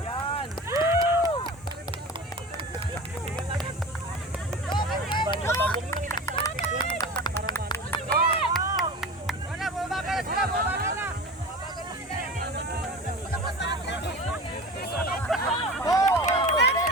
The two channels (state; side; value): normal; both; correlation 0.33